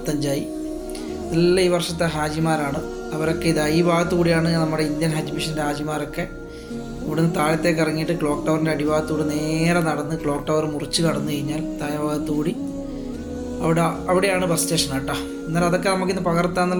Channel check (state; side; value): identical; both; correlation 1.00